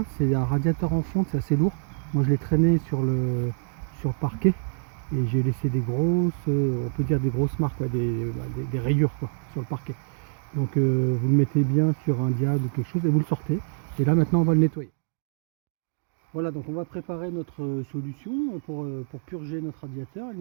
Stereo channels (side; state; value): left; silent; digital silence